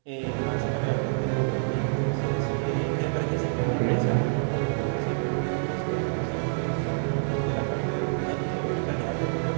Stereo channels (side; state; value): left; silent; digital silence